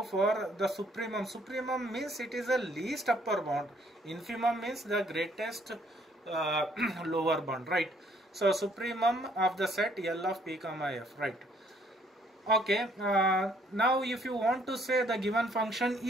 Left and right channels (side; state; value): both; normal; correlation 0.64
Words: for the supremum. Supremum means it is the least upper bound. Infimum means the greatest lower bound, right? So supremum of the set L of p comma f, right? Okay, now if you want to say the given function